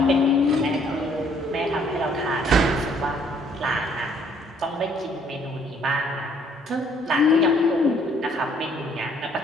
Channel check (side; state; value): both; normal; correlation 0.64